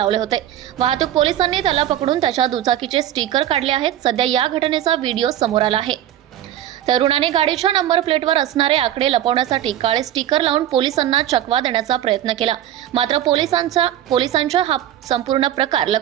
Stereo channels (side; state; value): left; quieter; 11.9 dB